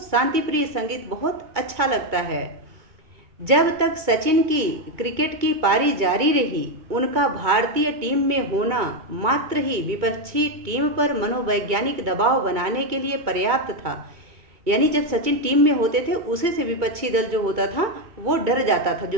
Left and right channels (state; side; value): late; left; 2.2 ms